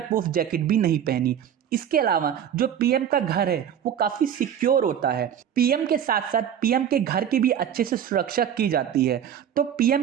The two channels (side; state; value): left; quieter; 9.3 dB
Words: प्रूफ जैकेट भी नहीं पहनी। इसके अलावा जो पीएम का घर है वो काफी सिक्योर होता है। पीएम के साथ साथ पीएम के घर की भी अच्छे से सुरक्षा की जाती है। तो पीएम